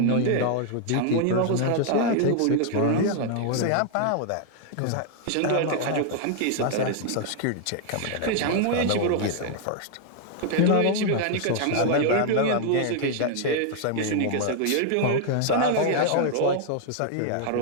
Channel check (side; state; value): both; different; correlation 0.00